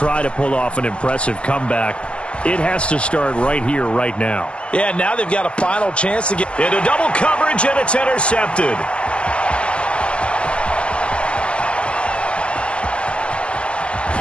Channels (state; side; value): late; right; 0.054 ms